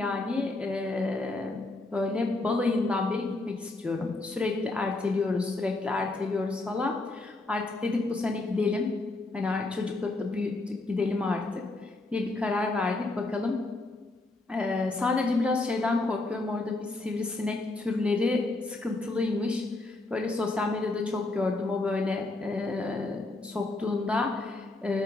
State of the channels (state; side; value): quieter; right; 3.0 dB